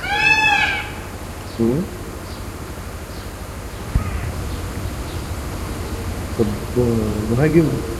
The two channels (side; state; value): both; identical; correlation 1.00